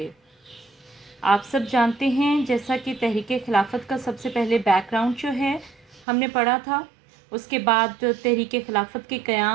आप सब जानते हैं जैसा कि तहरीक खिलाफत का सबसे पहले बैकग्राउंड जो है हमने पढ़ा था। उसके बाद तहरीक खिलाफत के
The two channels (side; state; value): left; drops out; at 6.1 s